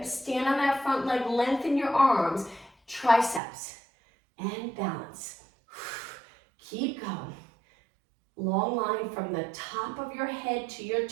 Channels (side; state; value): left; drops out; at 3.4 s